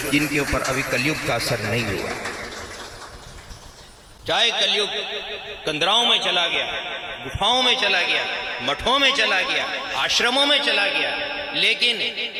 जिनके ऊपर अभी कलयुग का असर नहीं हुआ। चाहे कलयुग कंदराओं में चला गया, गुफाओं में चला गया, मठों में चला गया, आश्रमों में चला गया, लेकिन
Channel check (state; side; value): identical; both; correlation 1.00